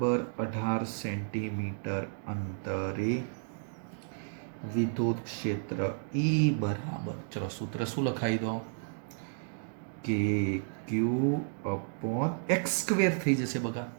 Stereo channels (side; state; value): left; silent; digital silence